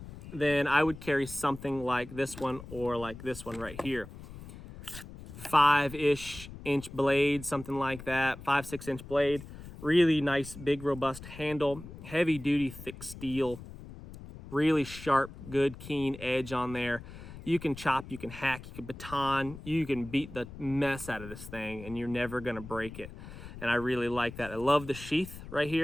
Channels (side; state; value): left; noise; rumble, 14 dB below the sound